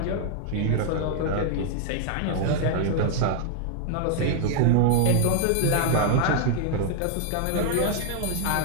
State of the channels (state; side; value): different; both; correlation 0.00